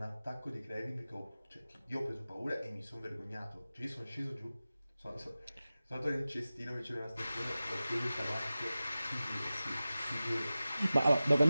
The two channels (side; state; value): both; inverted; correlation -0.96